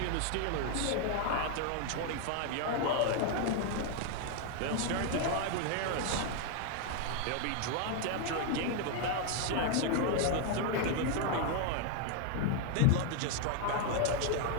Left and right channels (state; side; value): different; both; correlation 0.01